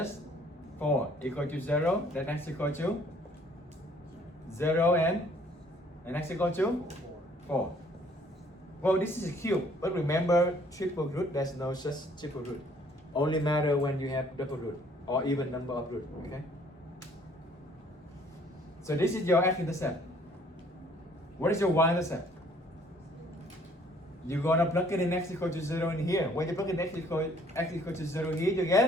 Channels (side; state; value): both; normal; correlation 0.60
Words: 4 equal to 0. Then x equal to 0 and x equal to 4. Well, this is a cube, but remember triple root, there's no such triple root. Only matter when you have double root or even number of root, okay? So this is your x-intercept. What is your y-intercept? You're gonna plug it in x equal to 0 in here. When you plug in x equal to 0 here, you